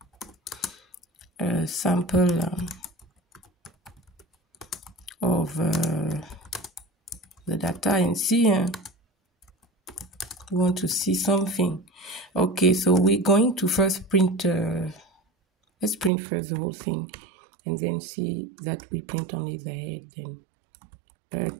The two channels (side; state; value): left; drops out; at 16.1 s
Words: a sample of the data and see we want to see something. Okay, so we're going to first print let's print first the whole thing and then see that we print only the head. Then